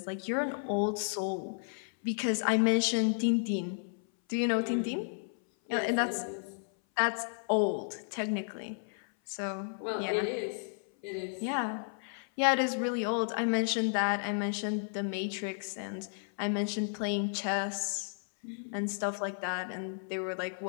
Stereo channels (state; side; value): silent; right; 56 dB below the other